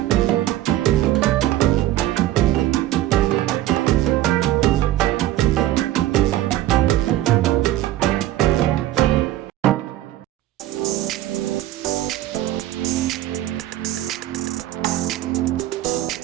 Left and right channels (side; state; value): left; quieter; 14.3 dB